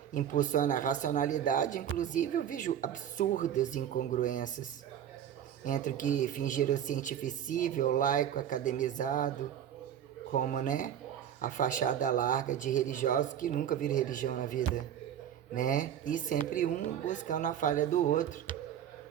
impulsiona a racionalidade, inclusive eu vejo absurdas incongruências entre o que fingiram cientificível, laico, academizado, como, né, a fachada larga de religiosos que nunca viram religião na vida, né? E sempre um buscando a falha do outro,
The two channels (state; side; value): quieter; left; 9.9 dB